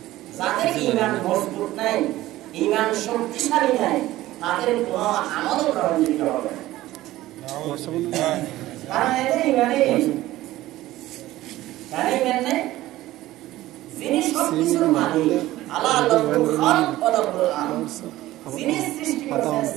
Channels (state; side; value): quieter; left; 16.1 dB